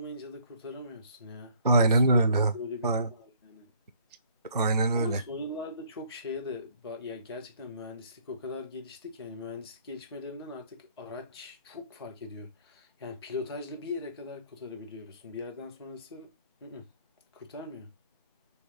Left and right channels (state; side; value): inverted; both; correlation -0.61